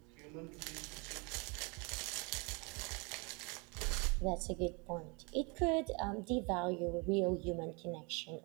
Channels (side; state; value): left; quieter; 31.1 dB